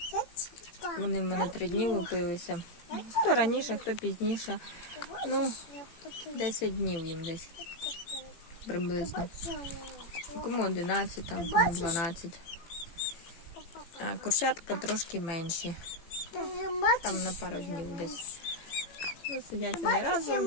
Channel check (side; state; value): right; late; 18 ms